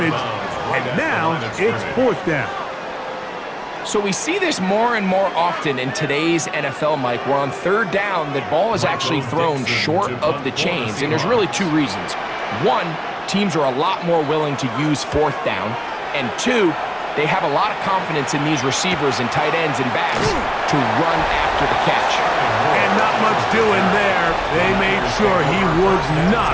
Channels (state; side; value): identical; both; correlation 1.00